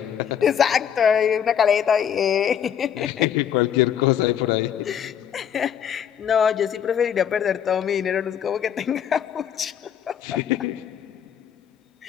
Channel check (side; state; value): right; quieter; 8.7 dB